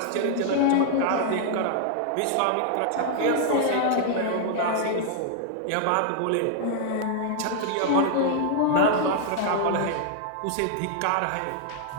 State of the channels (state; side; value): different; both; correlation 0.00